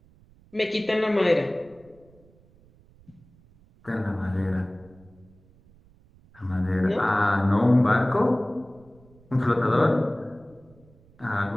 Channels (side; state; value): right; noise; rumble, 28 dB below the sound